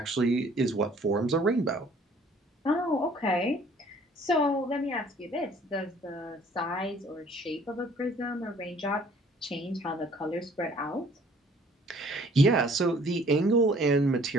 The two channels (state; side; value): normal; both; correlation 0.56